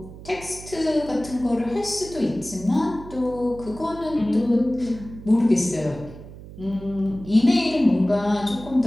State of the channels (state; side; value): noise; right; hum, 15 dB below the sound